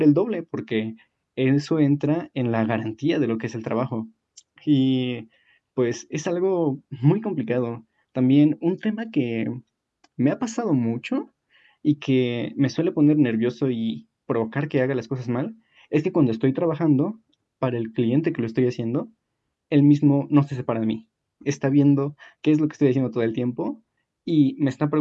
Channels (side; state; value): both; identical; correlation 1.00